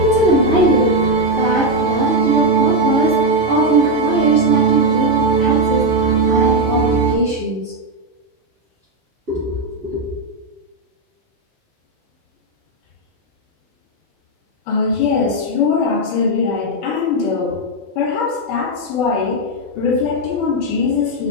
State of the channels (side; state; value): both; normal; correlation 0.04